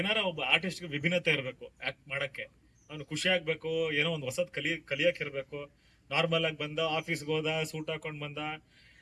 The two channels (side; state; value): both; identical; correlation 1.00